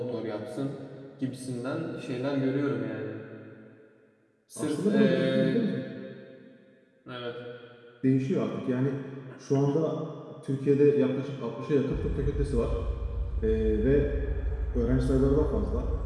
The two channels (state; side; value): identical; both; correlation 1.00